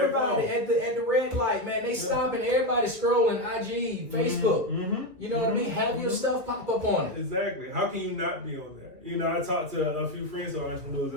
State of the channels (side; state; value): left; late; 2.4 ms